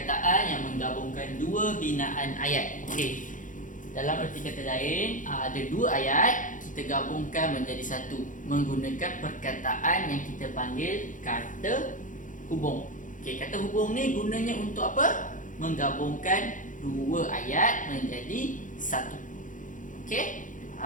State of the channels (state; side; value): late; right; 0.38 ms